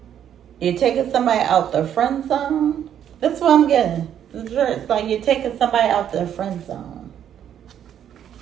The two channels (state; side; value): quieter; left; 9.7 dB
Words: You're taking somebody out the friend zone? That's what I'm getting. It's like you're taking somebody out the friend zone.